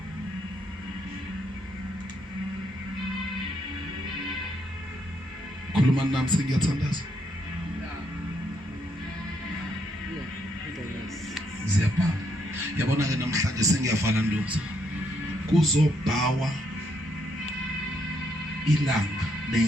khuluma nami sengiyathandaza ziyabhala yabona ke namhlanje sengiyavala ndoza kuzobhawa ilanga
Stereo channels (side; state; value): both; normal; correlation 0.75